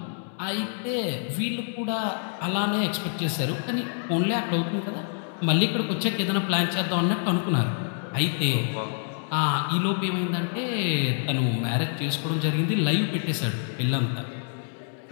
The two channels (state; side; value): silent; right; 60 dB below the other